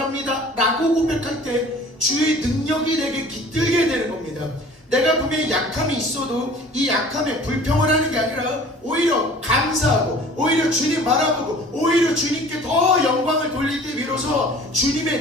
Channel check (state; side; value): normal; both; correlation 0.47